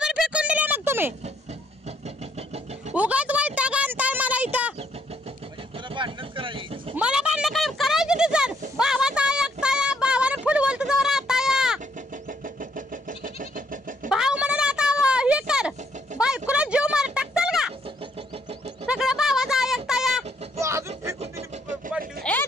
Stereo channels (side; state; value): both; normal; correlation 0.69